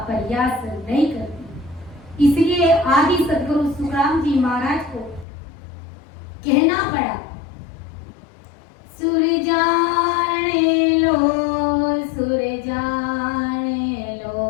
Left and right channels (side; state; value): right; drops out; at 5.2 s